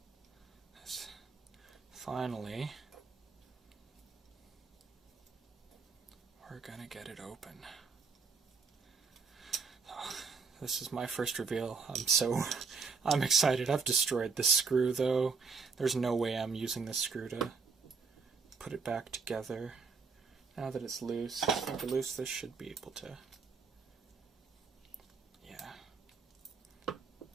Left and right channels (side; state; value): left; quieter; 5.0 dB